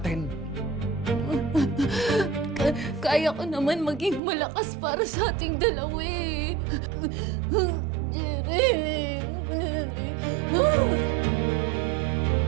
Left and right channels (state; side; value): drops out; left; at 4.2 s